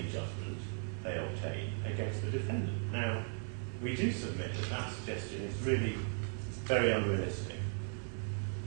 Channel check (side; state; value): left; silent; 53 dB below the other